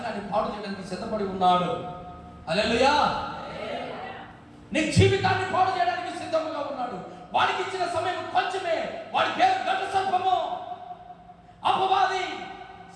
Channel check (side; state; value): both; identical; correlation 1.00